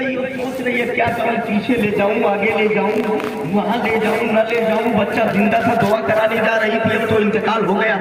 اور سوچ رہی ہے کیا کروں، پیچھے لے جاؤں، آگے لے جاؤں، وہاں لے جاؤں، نہ لے جاؤں، بچہ زندہ تھا دعا کرانے جا رہی تھی، اب تو انتقال ہو گیا،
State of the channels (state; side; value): identical; both; correlation 1.00